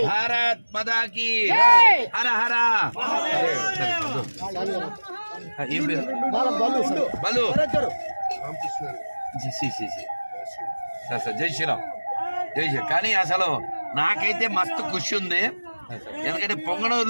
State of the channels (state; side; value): inverted; both; correlation -1.00